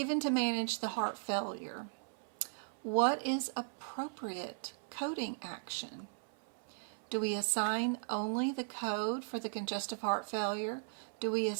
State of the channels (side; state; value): left; silent; 53 dB below the other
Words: to manage the heart failure. What is appropriate coding action? Do we assign only the code for the congestive heart failure? Do we